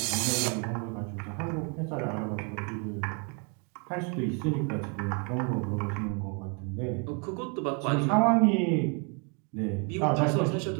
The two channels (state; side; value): quieter; left; 35.8 dB